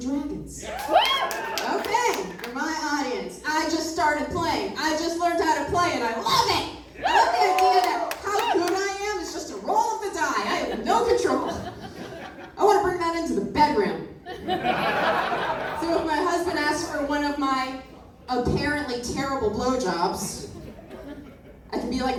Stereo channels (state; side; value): identical; both; correlation 1.00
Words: Dragons? Okay, for my audience, I just started playing. I just learned how to play and I love it. I love the idea that how good I am is just a roll of the die. I have no control. I want to bring that into the bedroom. So if my husband asks for one of my apparently terrible blowjobs, I can be like,